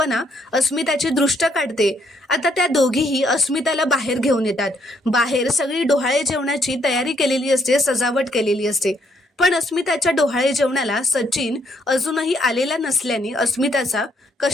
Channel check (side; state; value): both; normal; correlation 0.71